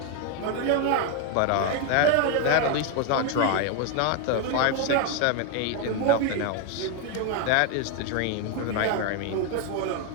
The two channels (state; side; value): different; both; correlation 0.01